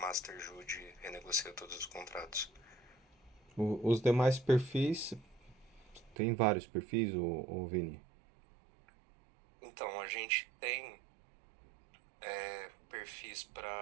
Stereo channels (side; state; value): left; drops out; at 6.2 s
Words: Jude renegocia todos os contratos. Os demais perfis, tem vários perfis, o Vini? Então, a gente tem perfis